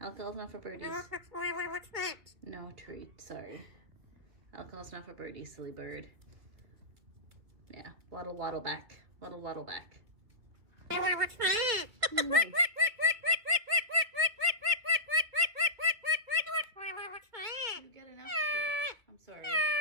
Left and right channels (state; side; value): late; left; 2.3 ms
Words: not for birdies. No treat, sorry. Alcohol's not for birdies, silly bird. Yeah, waddle back. Waddle back. What's that? Nice. You get enough treats. I'm sorry.